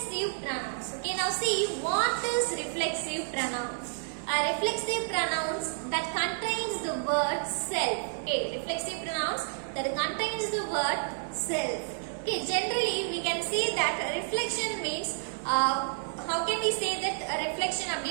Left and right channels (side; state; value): left; silent; digital silence